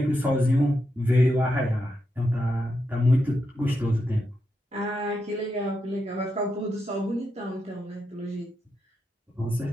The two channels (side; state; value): both; normal; correlation 0.85